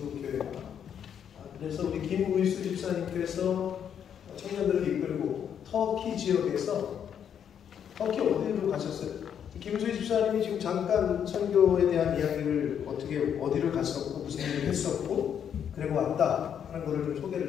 교회가. 그래서 우리 김우일수 집사님께서 청년들을 이끌고 터키 지역에서 터키 어디로 가셨어요? 김우일수 집사님이 지금 잠깐 선교에 대한 이야기를 어디를 갔었고 무슨 일을 했었고 그리고 왔다 하는 것을 좀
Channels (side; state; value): right; quieter; 8.6 dB